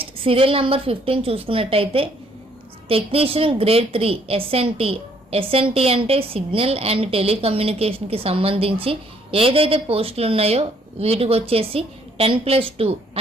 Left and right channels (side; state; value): both; normal; correlation 0.65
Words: సీరియల్ నెంబర్ 15 చూసుకున్నట్టయితే టెక్నీషియన్ గ్రేడ్ 3 ఎస్ఎన్టీ అంటే సిగ్నల్ అండ్ టెలికమ్యూనికేషన్కి సంబంధించి ఏదైతే పోస్టులు ఉన్నాయో వీటికి వచ్చేసి 10+2